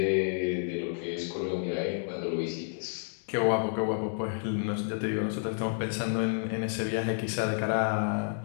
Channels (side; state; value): right; silent; digital silence